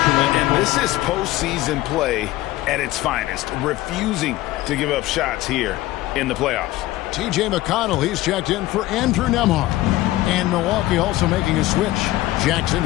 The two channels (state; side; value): quieter; right; 16.7 dB